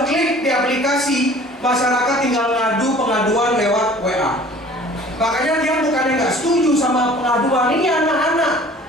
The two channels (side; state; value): both; normal; correlation 0.49